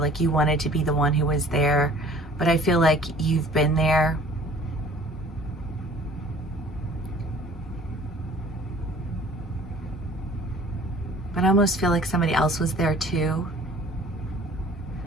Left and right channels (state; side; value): normal; both; correlation 0.51